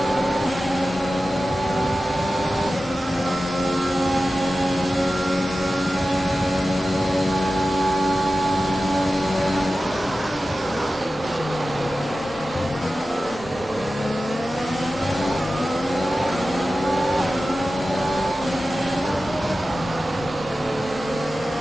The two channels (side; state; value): both; normal; correlation 0.94